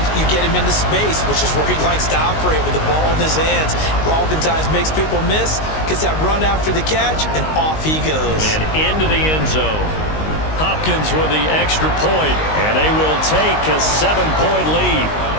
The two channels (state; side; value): late; right; 19 ms